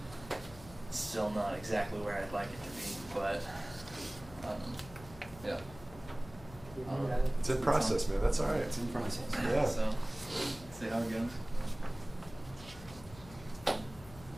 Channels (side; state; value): left; noise; hum, 17 dB below the sound